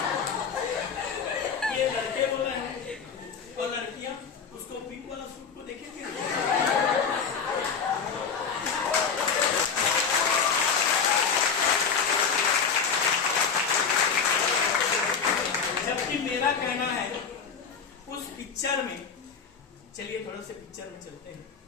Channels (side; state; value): right; quieter; 6.1 dB